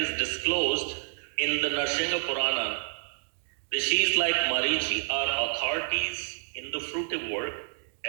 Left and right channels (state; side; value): silent; left; 59 dB below the other